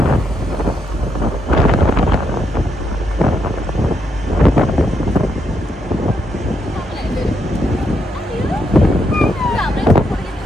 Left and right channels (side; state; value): both; normal; correlation 0.78